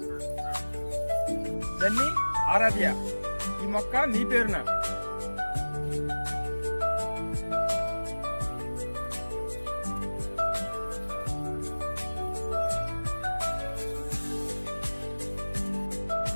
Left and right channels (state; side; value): inverted; both; correlation -1.00